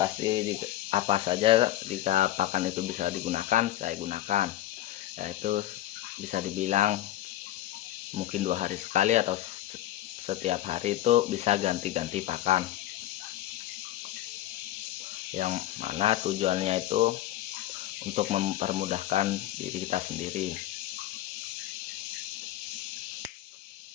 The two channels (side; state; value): right; quieter; 14.4 dB